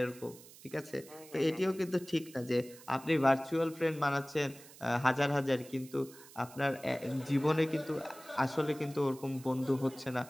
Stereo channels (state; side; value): noise; right; hiss, 20 dB below the sound